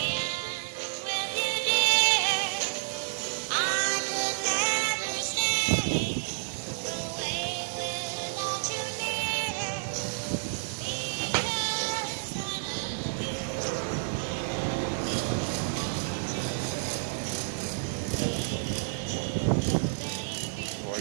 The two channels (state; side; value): silent; left; digital silence